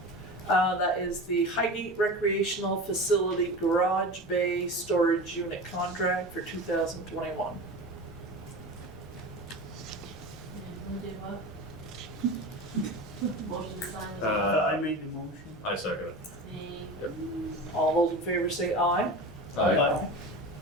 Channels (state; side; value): normal; both; correlation 0.30